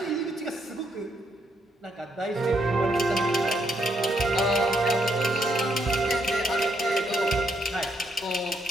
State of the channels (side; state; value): both; normal; correlation 0.75